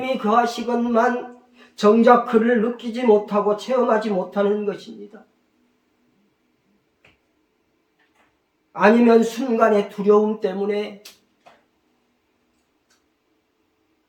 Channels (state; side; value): identical; both; correlation 1.00